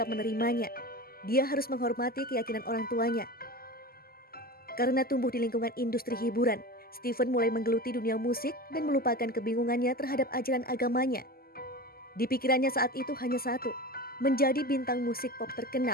menerimanya. Dia harus menghormati keyakinan orang tuanya. Karena tumbuh di lingkungan industri hiburan, Stevens mulai menggeluti dunia musik dan melupakan kebingungannya terhadap ajaran agamanya. Di pikirannya saat itu hanya satu, menjadi bintang musik pop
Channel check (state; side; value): late; right; 0.43 ms